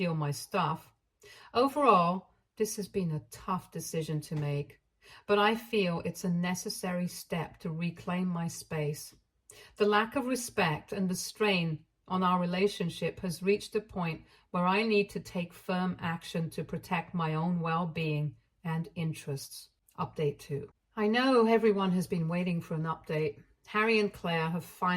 my stuff. Overall, this has been a tough decision to make, but I feel it's a necessary step to reclaim my space. The lack of respect and the strain on our relationship has reached a point where I need to take firm action to protect my own well-being and interests. Update 2. I know everyone has been waiting for an update. Harry and Claire have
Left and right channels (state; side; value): identical; both; correlation 1.00